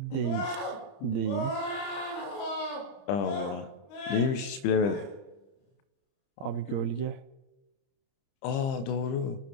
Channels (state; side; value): late; right; 30 ms